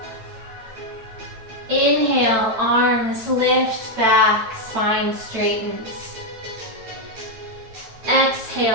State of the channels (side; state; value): left; late; 9.1 ms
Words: Inhale, arms lift back, spine straightens.